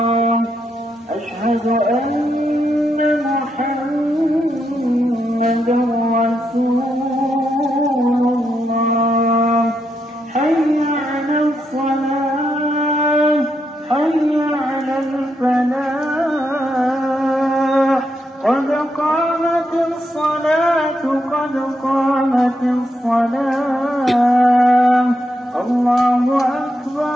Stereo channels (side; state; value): both; normal; correlation 0.81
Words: الصلاة قد قامت الصلاة الله